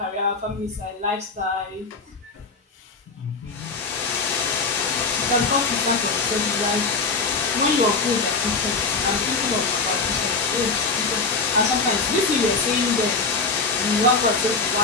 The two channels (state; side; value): quieter; right; 4.2 dB